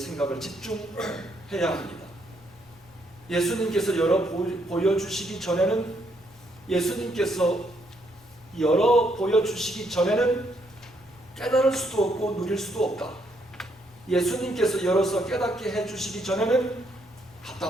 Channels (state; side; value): normal; both; correlation 0.73